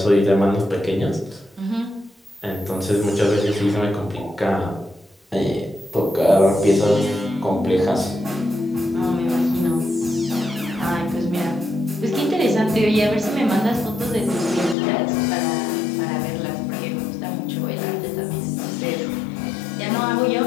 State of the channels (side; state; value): right; drops out; at 14.8 s